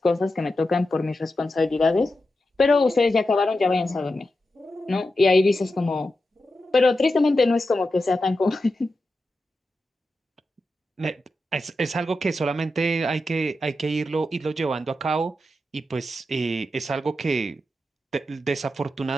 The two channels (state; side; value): normal; both; correlation 0.90